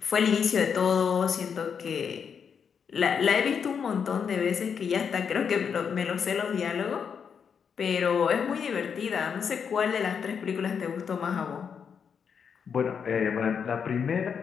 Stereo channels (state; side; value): quieter; right; 6.8 dB